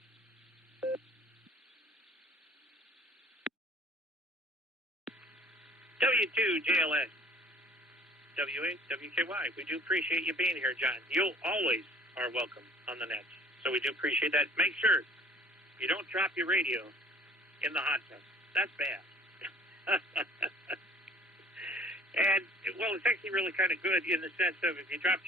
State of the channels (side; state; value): both; normal; correlation 0.51